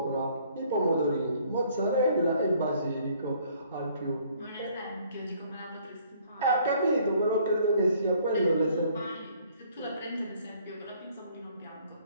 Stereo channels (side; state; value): both; inverted; correlation -0.61